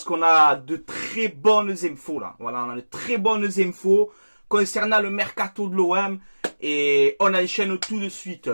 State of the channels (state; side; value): inverted; both; correlation -1.00